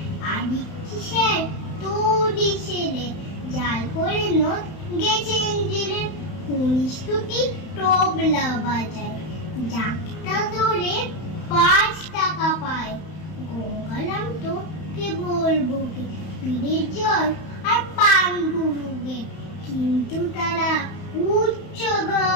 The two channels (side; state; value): right; late; 31 ms